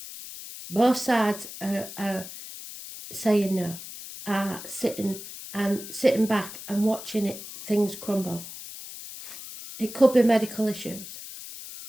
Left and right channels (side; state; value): left; noise; hiss, 12 dB below the sound